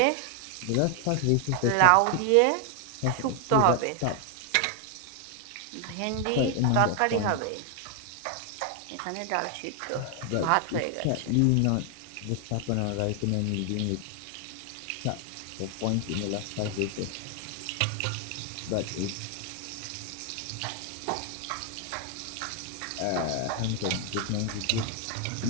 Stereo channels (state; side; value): different; both; correlation 0.00